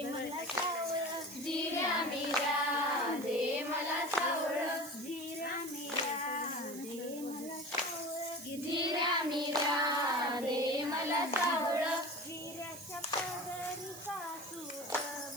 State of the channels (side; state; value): right; noise; hiss, 13 dB below the sound